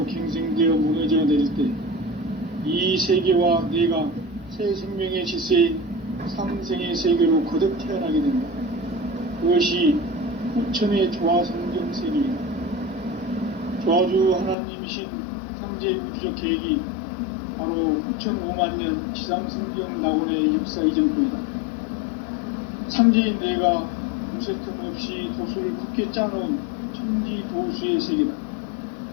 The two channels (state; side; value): drops out; right; at 14.6 s